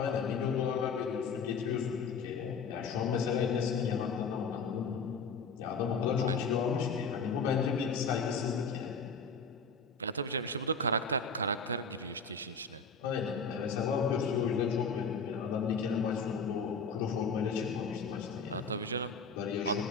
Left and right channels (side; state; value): right; quieter; 4.7 dB